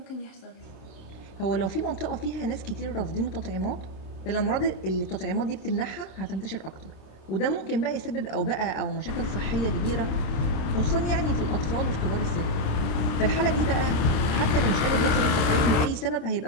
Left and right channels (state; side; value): late; right; 26 ms